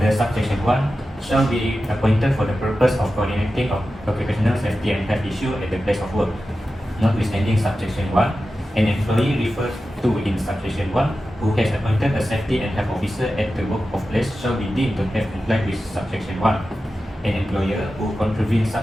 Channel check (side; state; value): both; normal; correlation 0.93